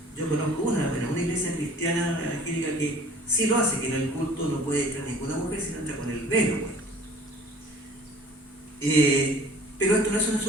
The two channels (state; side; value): normal; both; correlation 0.49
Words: Yo conozco una iglesia cristiana evangélica que sí lo hace, que en el culto no puede entrar ninguna mujer, sino entra con el velo. Pues. Pero esto no es un